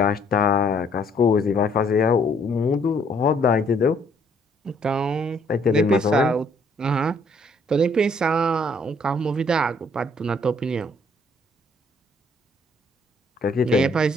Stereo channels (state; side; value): normal; both; correlation 0.64